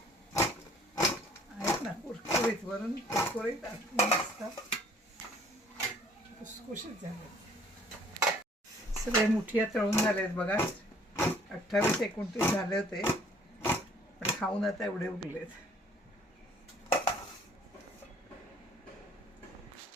आहेत ना कुरकुरीत, वरून कुरकुरीत, आतून मस्त खुसखुशीत झाले. सगळे मुठिया तळून झालेत बघा. 28-29 झाले होते, पण खाऊन आता एवढे उरलेत.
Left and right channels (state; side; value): normal; both; correlation 0.57